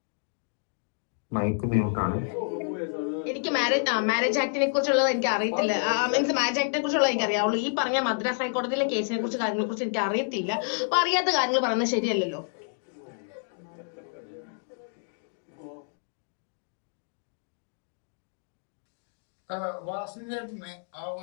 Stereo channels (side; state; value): right; silent; digital silence